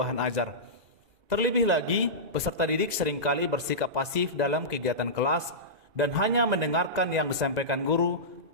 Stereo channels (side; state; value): left; late; 2.0 ms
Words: ajar. Terlebih lagi, peserta didik seringkali bersikap pasif dalam kegiatan kelas dan hanya mendengarkan yang disampaikan guru